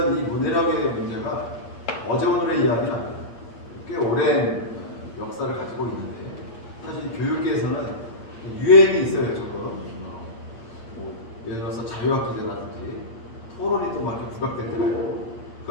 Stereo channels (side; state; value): right; late; 8.6 ms